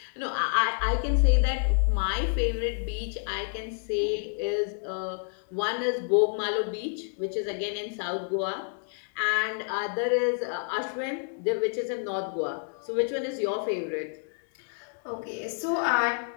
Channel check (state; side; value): silent; right; 59 dB below the other